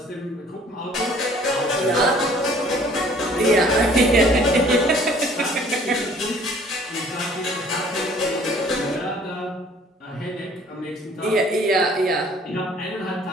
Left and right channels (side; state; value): both; normal; correlation 0.55